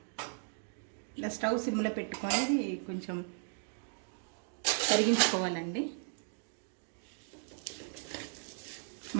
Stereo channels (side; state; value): left; silent; 54 dB below the other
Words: ఇలా స్టవ్ సిమ్లో పెట్టుకొని కొంచెం కరిగించుకోవాలండి.